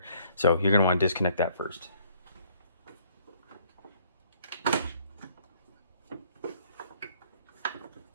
So you're going to want to disconnect that first. That'd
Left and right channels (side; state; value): both; inverted; correlation -0.63